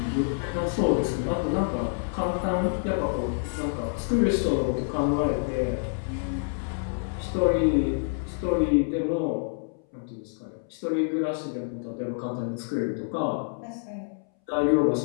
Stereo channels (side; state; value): right; silent; 60 dB below the other